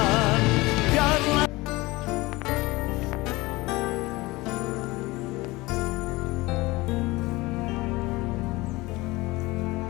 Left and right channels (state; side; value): quieter; right; 21.4 dB